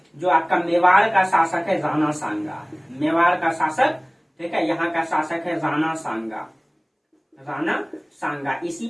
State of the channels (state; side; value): identical; both; correlation 1.00